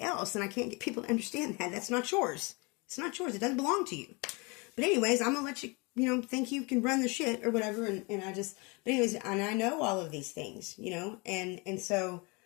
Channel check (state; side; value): quieter; right; 28.8 dB